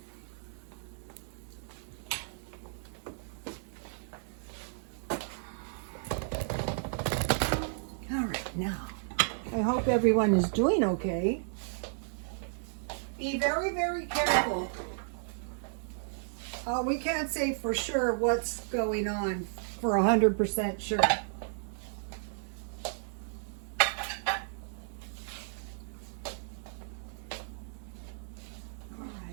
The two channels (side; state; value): left; silent; digital silence